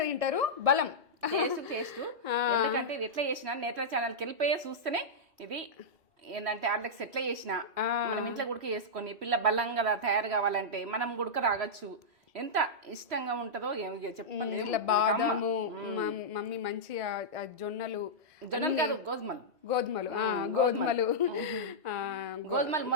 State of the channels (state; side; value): normal; both; correlation -0.10